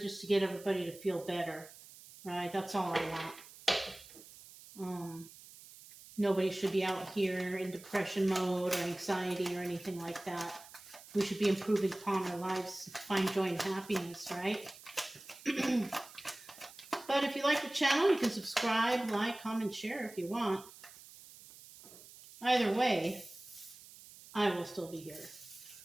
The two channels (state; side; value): noise; right; hiss, 19 dB below the sound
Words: to get everybody to feel better, right? That's all I want. Nobody should be out here in depression mode or anxiety or anything like that. We should be improving upon our lives, find joy and happiness, right? But if you like the channel, you can subscribe, like, comment, share if you want. Either way, I will still be here.